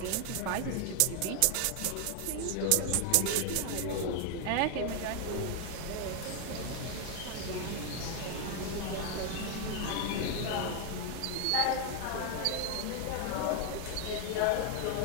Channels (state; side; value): different; both; correlation 0.00